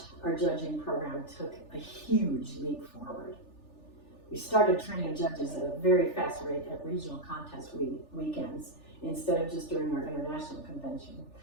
our judging program took a huge leap forward. We started training judges at a very fast rate at regional contest weekends instead of just during our international convention.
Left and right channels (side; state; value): right; late; 3.4 ms